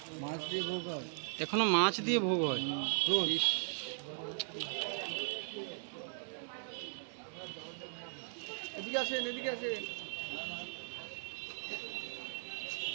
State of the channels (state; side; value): silent; left; digital silence